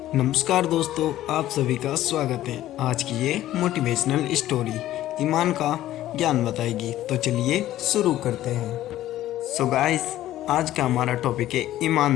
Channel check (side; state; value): right; quieter; 13.9 dB